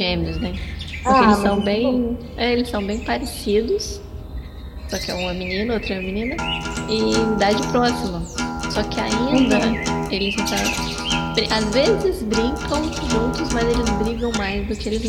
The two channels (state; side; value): identical; both; correlation 1.00